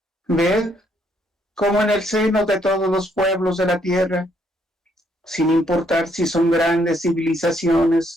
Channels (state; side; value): normal; both; correlation 0.71